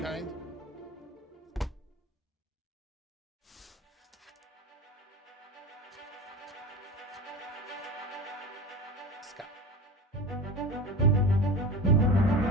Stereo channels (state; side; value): normal; both; correlation 0.31